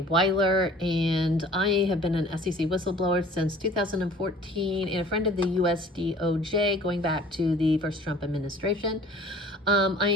Wyler, and I have been an SEC whistleblower since 2014 and a friend of the US DOJ going back to the first Trump administration. I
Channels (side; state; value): both; normal; correlation 0.49